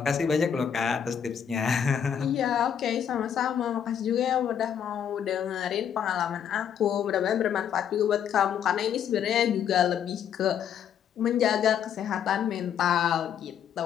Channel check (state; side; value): quieter; right; 8.6 dB